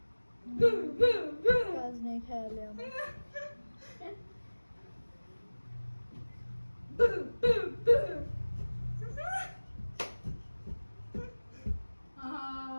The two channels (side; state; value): both; inverted; correlation -1.00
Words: কাজ নেই খেয়ালে আমার